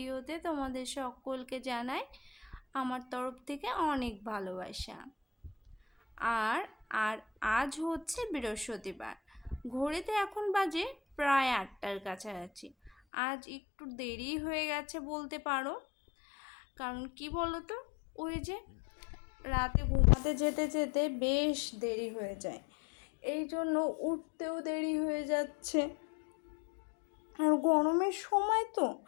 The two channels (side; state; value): right; drops out; at 12.9 s